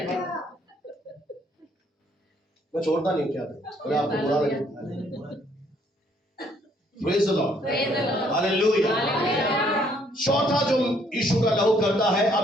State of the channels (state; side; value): normal; both; correlation 0.66